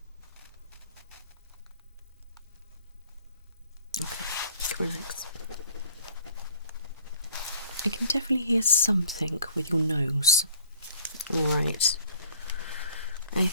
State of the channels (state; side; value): inverted; both; correlation -0.55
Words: Okay, relax. I can definitely hear something with your nose. Alright. I